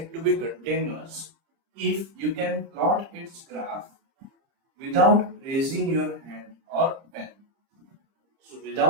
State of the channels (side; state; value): left; late; 30 ms